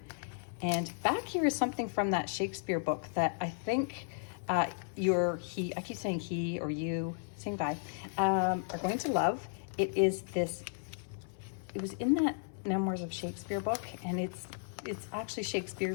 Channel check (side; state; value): right; silent; 55 dB below the other